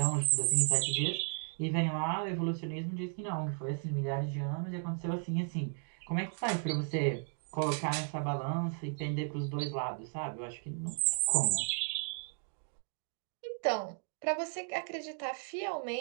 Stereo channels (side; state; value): left; silent; 54 dB below the other